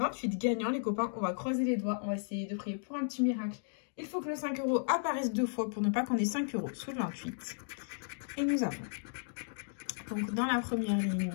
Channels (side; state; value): right; silent; digital silence